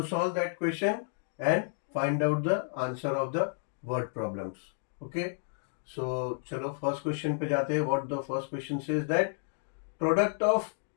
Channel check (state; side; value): silent; right; digital silence